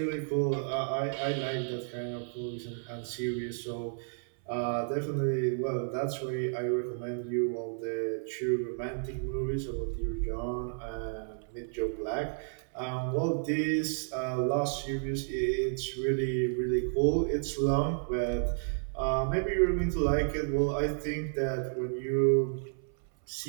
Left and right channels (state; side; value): silent; left; 57 dB below the other